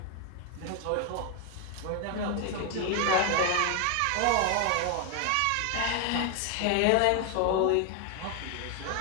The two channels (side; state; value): both; different; correlation 0.01